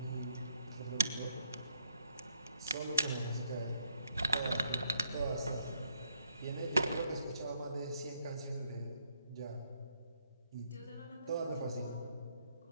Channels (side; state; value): both; inverted; correlation -0.72